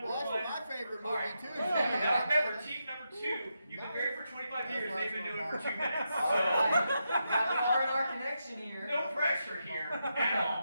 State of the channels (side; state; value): both; inverted; correlation -0.85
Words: Well, 1. that's my favorite All right. movie too. Now remember, team number 2, you've been married for 25 years, they've been doing it for 2 minutes. All right. So, Got an R&R connection here. no pressure here at